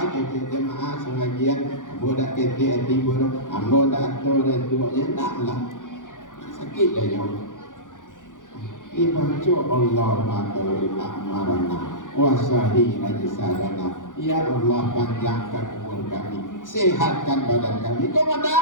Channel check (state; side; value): late; right; 0.88 ms